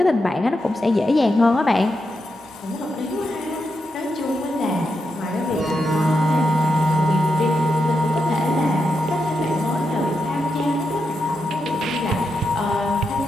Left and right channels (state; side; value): normal; both; correlation 0.85